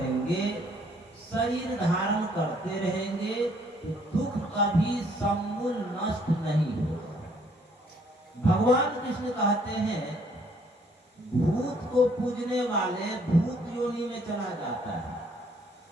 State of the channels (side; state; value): both; normal; correlation 0.64